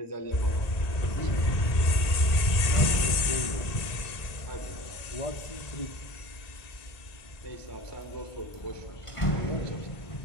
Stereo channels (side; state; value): right; late; 1.8 ms